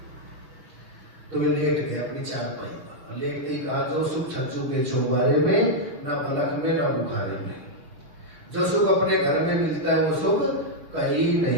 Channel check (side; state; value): left; late; 6.6 ms